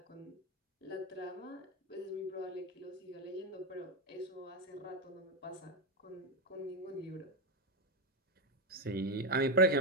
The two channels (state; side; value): normal; both; correlation 0.06